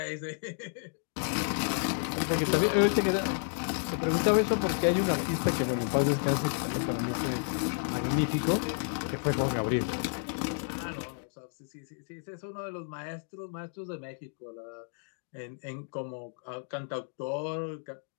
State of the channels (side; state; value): right; silent; digital silence